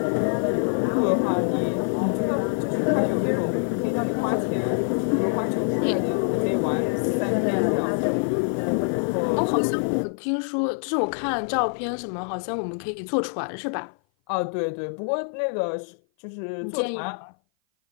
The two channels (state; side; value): silent; right; 56 dB below the other